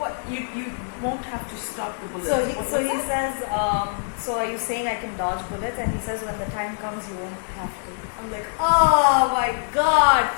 won't have to stop the bullet. So he says, so are you saying I can dodge bullets? And he says, when the time comes, you won't have to. I'm like, oh my God,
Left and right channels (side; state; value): right; silent; digital silence